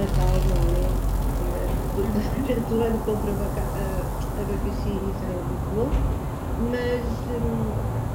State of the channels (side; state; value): both; identical; correlation 1.00